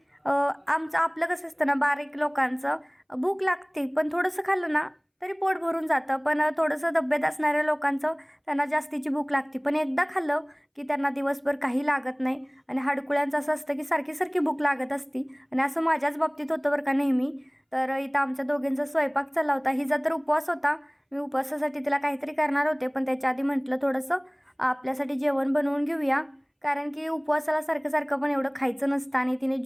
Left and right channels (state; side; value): identical; both; correlation 1.00